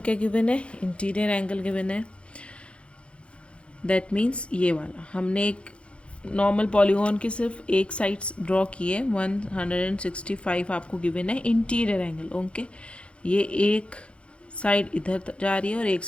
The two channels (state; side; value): late; right; 0.059 ms